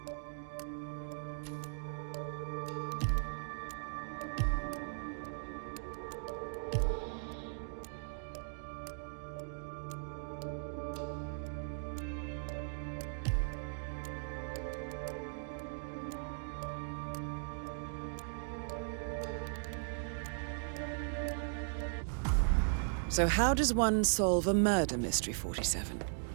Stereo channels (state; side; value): silent; left; digital silence